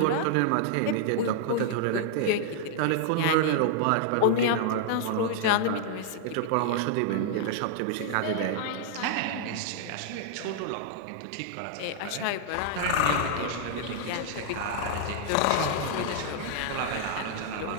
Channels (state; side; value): different; both; correlation -0.01